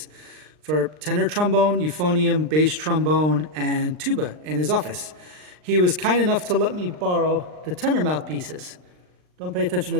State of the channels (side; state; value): left; late; 39 ms